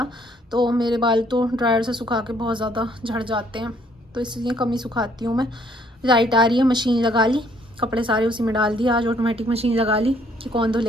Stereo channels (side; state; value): both; normal; correlation 0.64